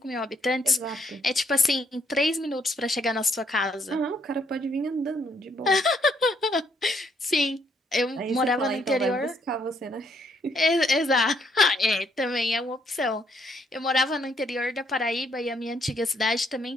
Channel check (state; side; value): normal; both; correlation 0.71